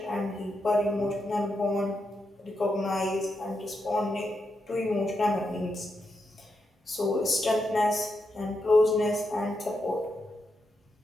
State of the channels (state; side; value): normal; both; correlation 0.84